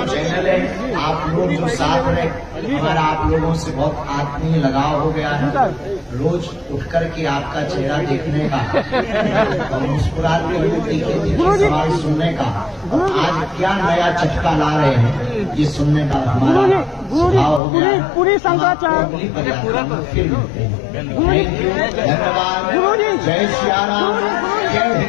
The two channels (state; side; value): drops out; right; at 17.6 s